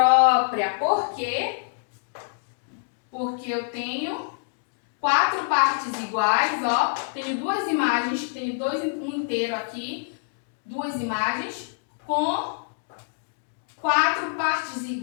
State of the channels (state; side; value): silent; right; digital silence